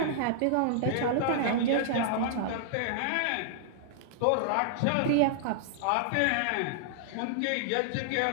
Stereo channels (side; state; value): both; different; correlation -0.01